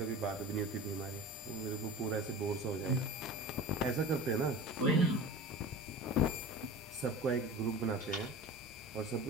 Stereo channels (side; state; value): both; normal; correlation 0.34